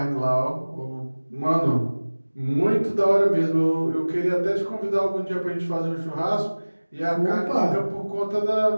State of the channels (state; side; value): inverted; both; correlation -1.00